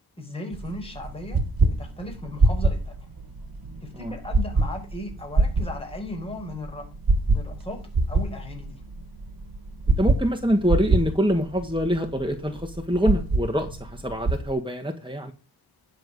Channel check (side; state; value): both; normal; correlation 0.73